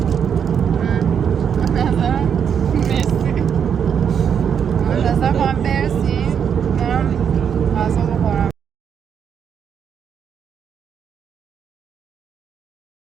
نظرم مرسی، منتظر خواهم برسیم برم غذا بخورم.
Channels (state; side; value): quieter; left; 7.7 dB